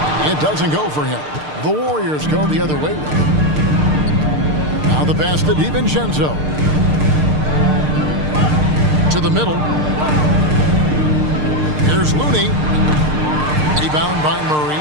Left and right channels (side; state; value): left; late; 6.6 ms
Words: It doesn't go for him. The Warriors go the other way with it. Now the pass to DiVincenzo. To the middle. Here's Looney. Rebound by Murray.